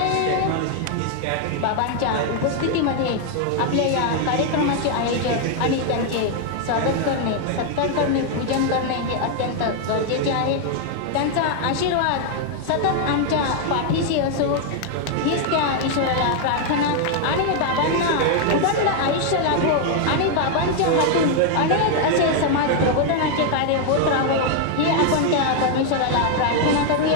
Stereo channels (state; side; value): different; both; correlation 0.00